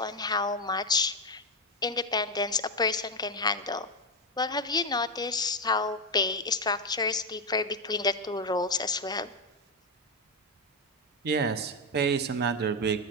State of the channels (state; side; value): normal; both; correlation 0.07